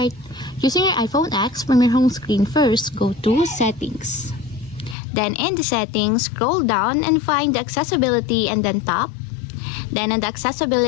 Using your iPhone X from your home screen, first go to Settings. Then in the Settings, scroll down and find the Accessibility and then tap. Then in the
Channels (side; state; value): right; drops out; at 5.0 s